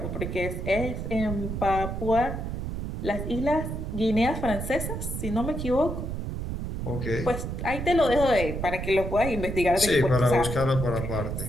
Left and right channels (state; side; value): noise; right; rumble, 4 dB below the sound